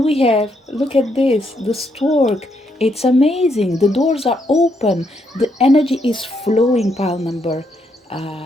we have, look at this, the stork. It's amazing. The doors are open. The energy is flowing. Pile number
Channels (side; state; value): both; normal; correlation 0.76